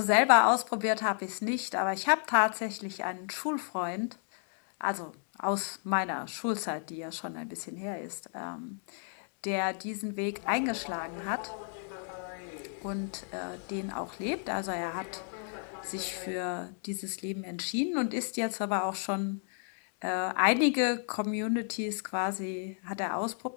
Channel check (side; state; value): right; silent; 56 dB below the other